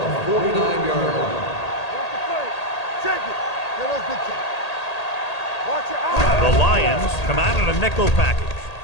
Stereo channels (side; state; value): right; late; 1.8 ms